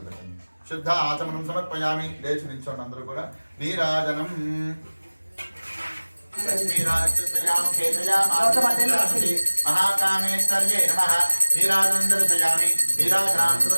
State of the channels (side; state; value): both; inverted; correlation -1.00